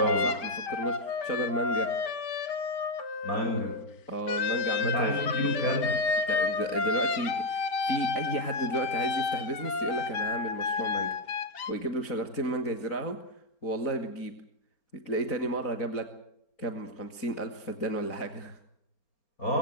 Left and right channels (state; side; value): late; right; 4.4 ms